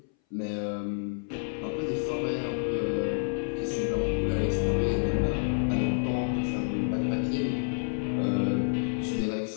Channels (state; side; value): silent; right; 59 dB below the other